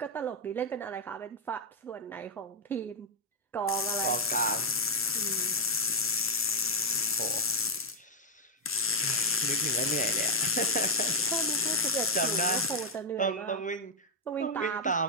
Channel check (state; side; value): normal; both; correlation 0.01